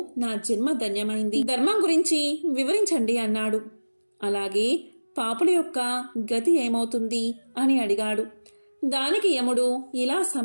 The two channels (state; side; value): inverted; both; correlation -1.00